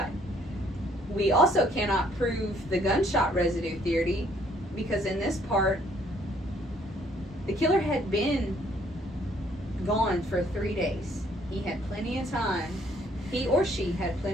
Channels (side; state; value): both; normal; correlation 0.64